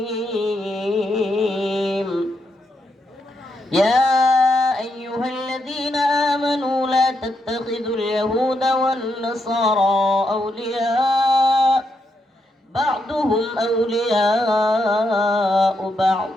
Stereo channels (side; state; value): both; normal; correlation 0.81